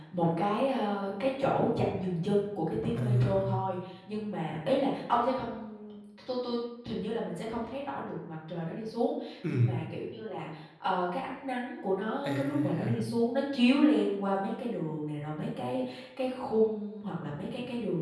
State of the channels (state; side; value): identical; both; correlation 1.00